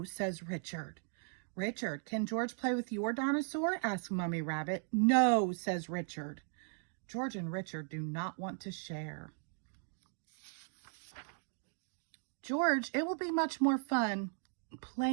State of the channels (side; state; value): left; silent; 53 dB below the other